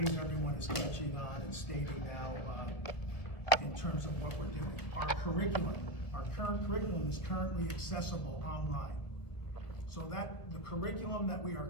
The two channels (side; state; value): right; late; 1.3 ms